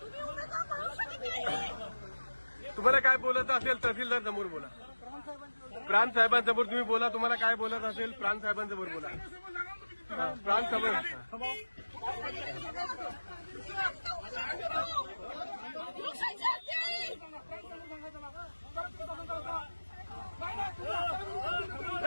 तुम्हाला काय बोलत असेल तहसीलदार समोर बोला. प्रांत साहेबांसमोर तुम्ही बोला. तुम्हाला काय बोलत असेल प्रांत साहेबांसमोर बोला. प्रांत समोर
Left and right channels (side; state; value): both; inverted; correlation -1.00